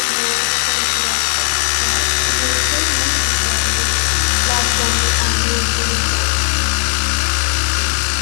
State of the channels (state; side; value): silent; right; digital silence